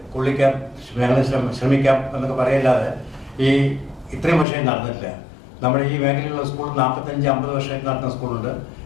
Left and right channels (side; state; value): right; drops out; at 4.5 s